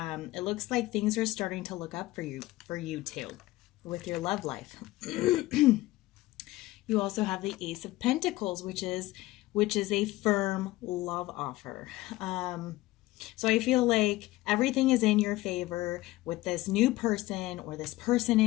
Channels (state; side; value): quieter; right; 18.1 dB